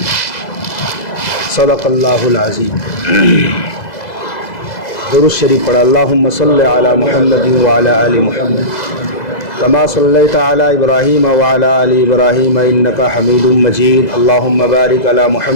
صدق اللہ العظیم۔ درود شریف پڑھا۔ اللہم صلی علی محمد وعلی آل محمد کما صلیت علی ابراہیم وعلی آل ابراہیم انکا حمید مجید۔ اللہم بارک علی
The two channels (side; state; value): right; late; 2.0 ms